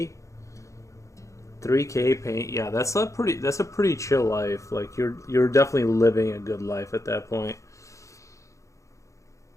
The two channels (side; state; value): right; late; 0.15 ms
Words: paint, yeah, that's a pretty chill life. Like you're definitely living a good life at that point.